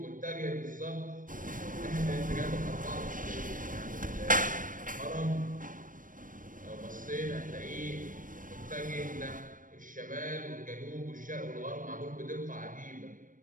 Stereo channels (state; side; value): late; left; 0.39 ms